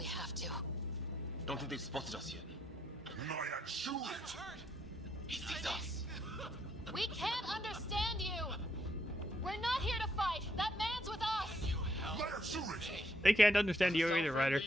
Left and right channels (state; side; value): normal; both; correlation 0.73